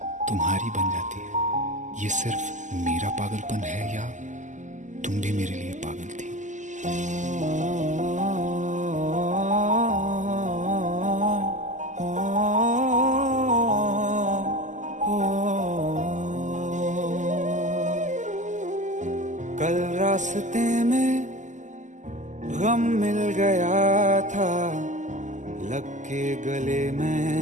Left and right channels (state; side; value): late; left; 0.35 ms